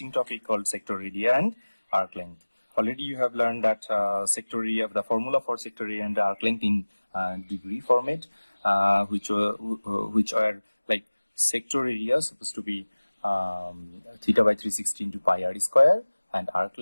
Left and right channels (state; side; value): inverted; both; correlation -1.00